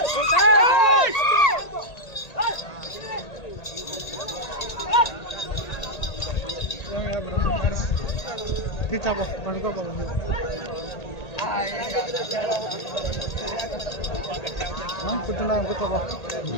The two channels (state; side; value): late; right; 1.8 ms